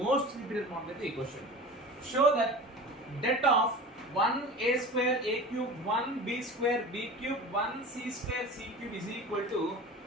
మోస్ట్ రిపీటెడ్ మోడల్ అయితే ఈ question. Show that det of 1a square a cube 1b square b cube 1c square c cube is equal to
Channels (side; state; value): both; normal; correlation 0.35